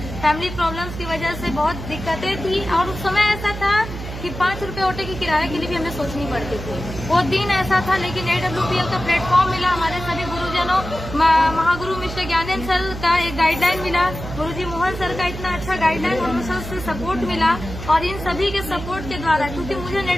फैमिली प्रॉब्लम्स की वजह से बहुत दिक्कतें थी, और उस समय ऐसा था कि 5 रुपए ऑटो की किराए के लिए भी हमें सोचनी पड़ती थी। वो दिन ऐसा था, लेकिन AWPL का प्लेटफॉर्म मिला, हमारे सभी गुरुजनों, महागुरु मिस्टर ज्ञानेंद्र सर का एक गाइडलाइन मिला, गुरुजी मोहन सर का इतना अच्छा गाइडलाइन और सर से सपोर्ट मिला, और इन सभी के सपोर्ट के द्वारा, क्योंकि मुझे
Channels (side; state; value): right; noise; hum, 9 dB below the sound